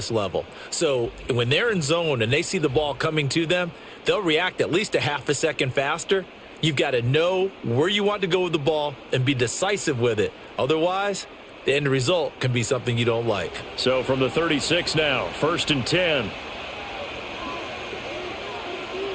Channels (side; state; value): both; identical; correlation 1.00